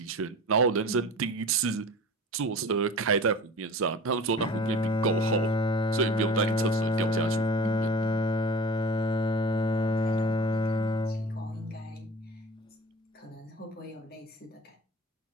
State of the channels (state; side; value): normal; both; correlation 0.38